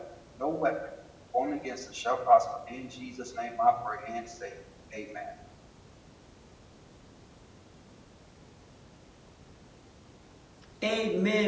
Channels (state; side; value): identical; both; correlation 1.00